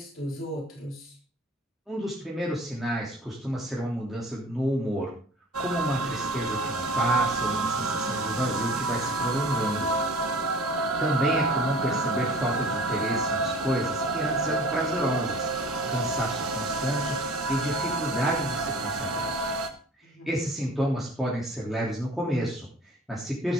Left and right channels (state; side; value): normal; both; correlation 0.45